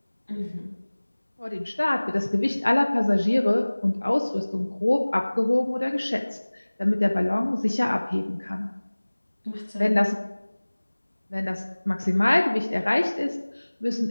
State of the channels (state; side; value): inverted; both; correlation -1.00